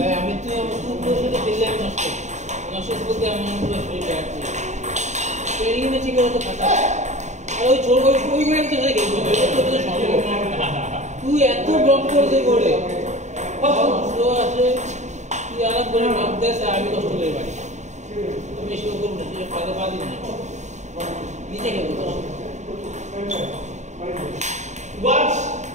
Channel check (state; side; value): late; left; 0.34 ms